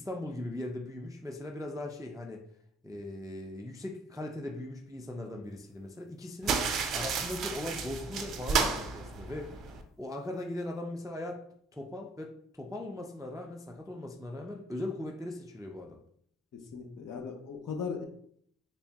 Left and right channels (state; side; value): normal; both; correlation 0.62